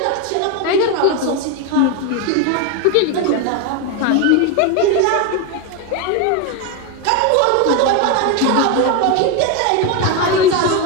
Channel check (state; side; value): different; both; correlation 0.02